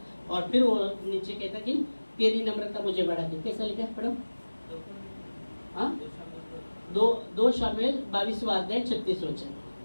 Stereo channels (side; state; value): both; inverted; correlation -1.00